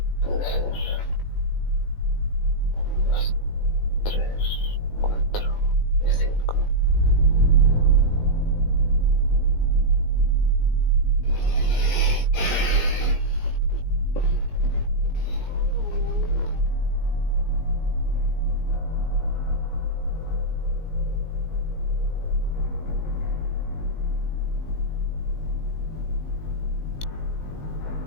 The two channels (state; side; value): late; right; 19 ms